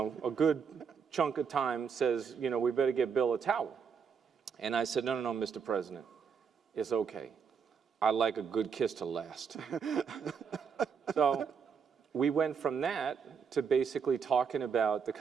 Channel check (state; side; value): quieter; left; 6.4 dB